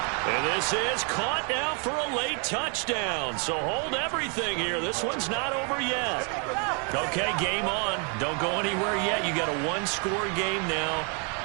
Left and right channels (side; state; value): left; quieter; 37.1 dB